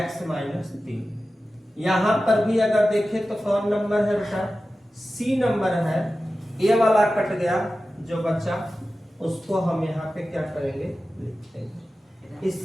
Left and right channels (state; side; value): normal; both; correlation 0.94